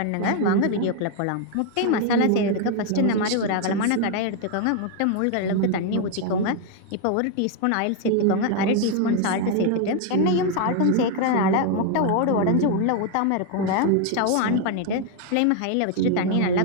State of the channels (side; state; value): both; different; correlation 0.01